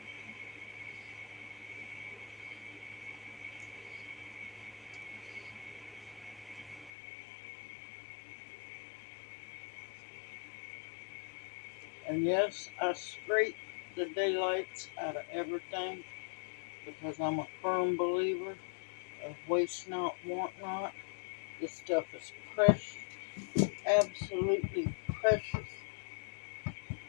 And yes, I scrape the daylights out of everything because I'm a firm believer of waste not, want not. This stuff is precious, absolutely precious.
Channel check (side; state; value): right; drops out; at 6.9 s